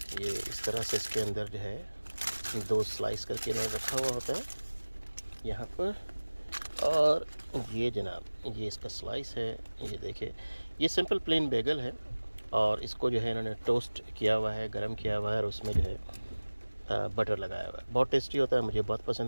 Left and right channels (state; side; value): inverted; both; correlation -1.00